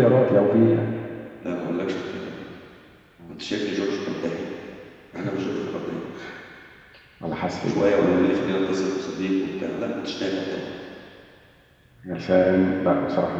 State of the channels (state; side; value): identical; both; correlation 1.00